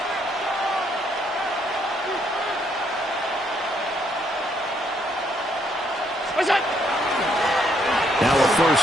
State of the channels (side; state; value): both; normal; correlation 0.71